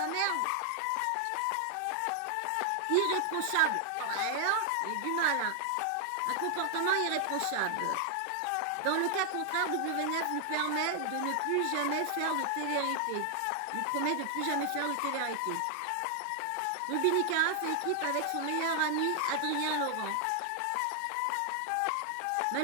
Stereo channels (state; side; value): different; both; correlation 0.00